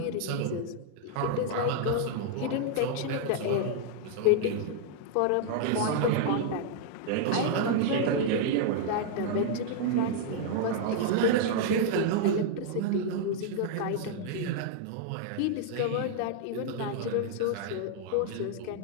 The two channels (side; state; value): both; different; correlation 0.00